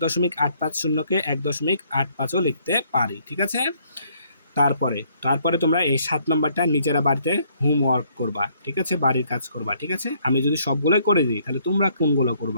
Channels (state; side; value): inverted; both; correlation -0.67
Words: 1.850ও লিখতে পারি, ঠিক আছে। তারপরে তোমরা এই 7 নম্বরটা নিজেরা বাড়িতে হোমওয়ার্ক করবা, ঠিক আছে, বাড়ির কাজ করবা, ঠিক আছে। আমি যদি সবগুলোই করে দিই তাহলে তোমরা কোনগুলো